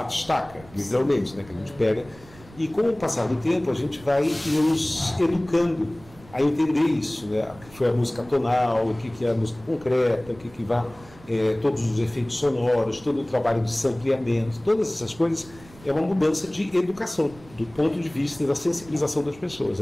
literalmente, né, que a gente pega. E com o passar do tempo, a gente vai nos educando a entender isso, né? O que foi a música tonal, o que é a música concreta, o que vai, todos os efeitos sonoros, todo o trabalho de sampleamento, todas essas coisas é uma mudança de educação, do ponto de vista da sensibilização das pessoas.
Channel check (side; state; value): right; noise; rumble, 22 dB below the sound